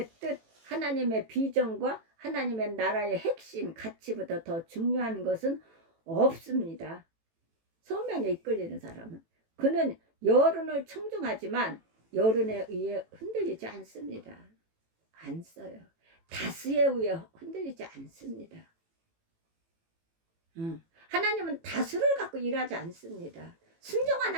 뜻, 하나님의 비전과 하나님의 나라의 핵심, 가치보다 더 중요한 것은 없습니다. 소명에 이끌리는 사람은. 그는 여론을 청중하지만 여론에 의해 흔들리지 않습니다. 안 써요. 다수에 의해 흔들리지 않습니다. 하나님은 다수를 갖고 일하지 않습니다.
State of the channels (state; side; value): late; left; 18 ms